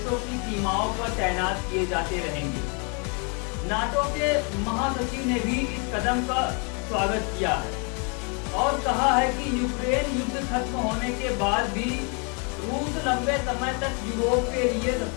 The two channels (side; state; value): right; quieter; 35.7 dB